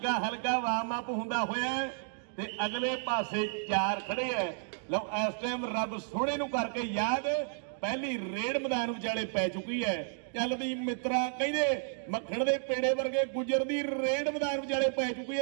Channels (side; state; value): left; silent; 56 dB below the other